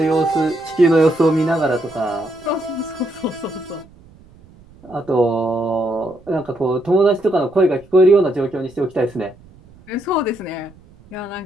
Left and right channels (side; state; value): right; noise; rumble, 25 dB below the sound